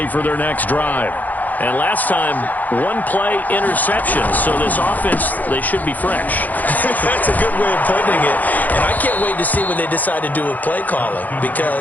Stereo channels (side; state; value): right; late; 0.081 ms